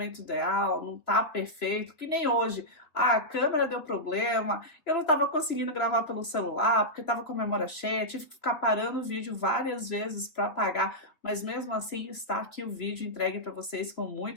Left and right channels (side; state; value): right; late; 3.2 ms